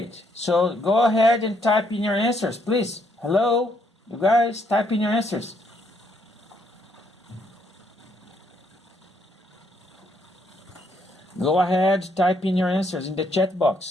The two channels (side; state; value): both; normal; correlation 0.72